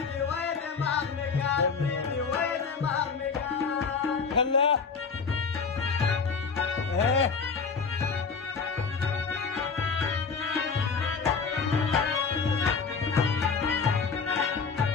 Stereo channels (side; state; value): right; quieter; 5.3 dB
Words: وای دماغ مې کار پریدي وای دماغ مې کار کله